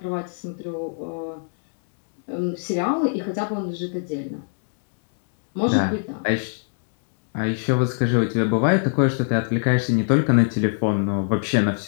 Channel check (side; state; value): right; silent; digital silence